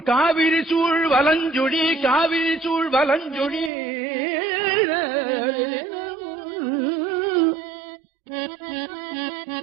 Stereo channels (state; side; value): drops out; left; at 3.7 s